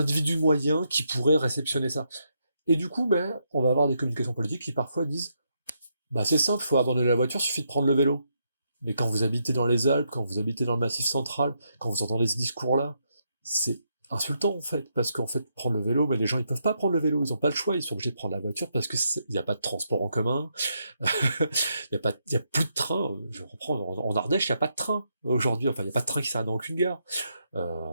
moyen qui pourrait réceptionner ça. Et du coup, on va avoir des communications politiques qui parfois disent c'est simple, faut abandonner la voiture, suffit de prendre le vélo. Mais quand vous habitez dans les Alpes, quand vous habitez dans le Massif central, quand vous entendez ce discours-là, c'est insultant en fait, parce qu'en fait prendre le vélo, mais les gens ils peuvent pas prendre le vélo, ils ont pas le choix, ils sont obligés de prendre la voiture parce que il y a pas de transport en commun, il y a plus de train. Je reprends en Ardèche, il y a pas de train aujourd'hui, il y a pas de train qui s'arrête dans aucune gare.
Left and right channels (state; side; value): inverted; both; correlation -0.79